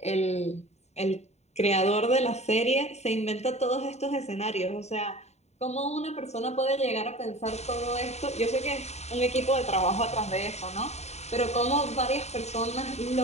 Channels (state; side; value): late; right; 0.32 ms